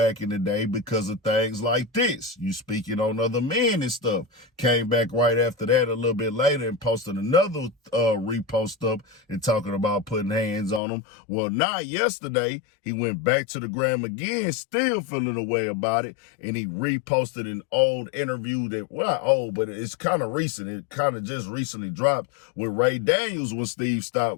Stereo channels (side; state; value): right; drops out; at 10.8 s